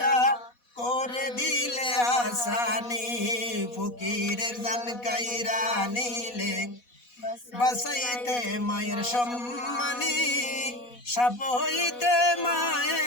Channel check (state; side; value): late; right; 4.1 ms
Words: করে দিলে আসানি। ফকিরের জান কাইরা নিলে বাসাইতে মায়ের সম্মানী। সাপ হইতে